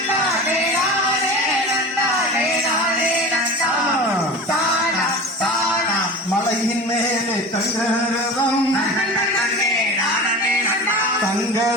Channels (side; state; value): both; normal; correlation 0.33